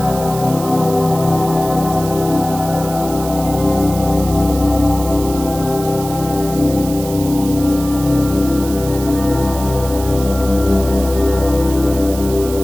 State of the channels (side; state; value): right; noise; hiss, 13 dB below the sound